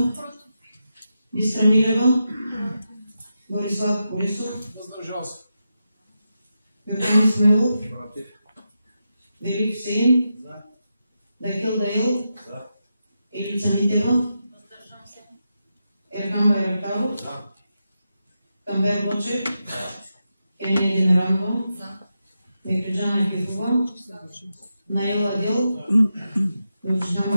Бистра Милева, Борислав Колесов, Йордан Исмаилов, Велик Хусейн, Дакил Даил, Елица Митева, Ерхан Байрактаров, Камбер Бочев, Кения Демиранова, Мекриджана Екифова, Наел Адел,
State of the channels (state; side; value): inverted; both; correlation -0.88